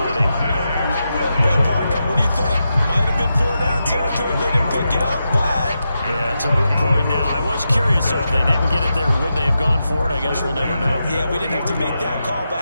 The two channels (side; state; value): both; inverted; correlation -0.87